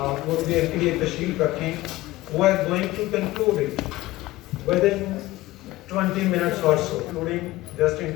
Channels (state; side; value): quieter; right; 18.0 dB